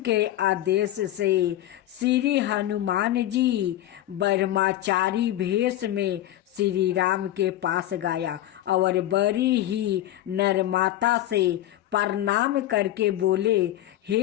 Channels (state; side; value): quieter; right; 13.8 dB